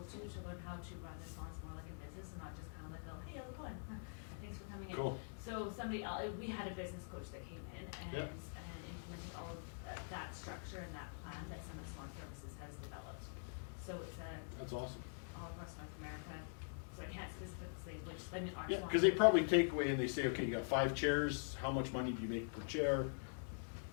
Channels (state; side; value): silent; right; digital silence